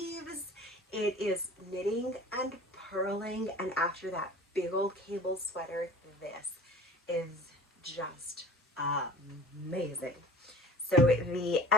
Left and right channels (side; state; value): both; normal; correlation 0.43